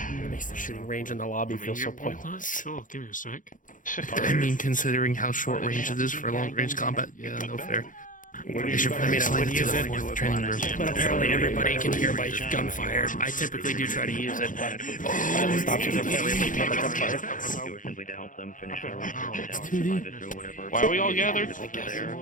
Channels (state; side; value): late; right; 0.38 ms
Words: It makes the shooting range in the lobby feel so pointless. Oh, give me a sec. I mean, considering how short range it is for long range combat, yeah, no fair. They should probably slide it to the fourth training room. But apparently everybody can hear by gunfire. I typically do try to use it, but options are fairly limited by gunfire. Simply to help them finish their Why are we all gathered?